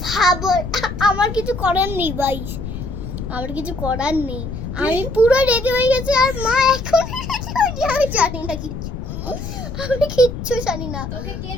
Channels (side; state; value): left; noise; rumble, 7 dB below the sound